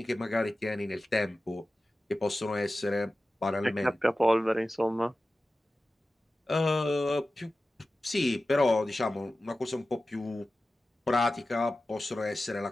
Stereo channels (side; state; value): both; normal; correlation 0.95